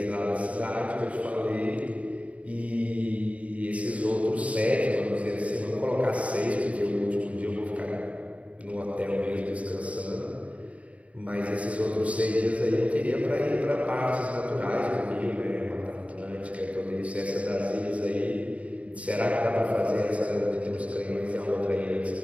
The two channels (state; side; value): late; left; 0.066 ms